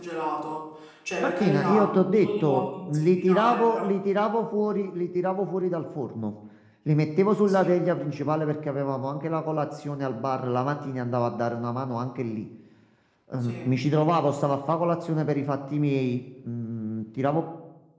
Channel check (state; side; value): identical; both; correlation 1.00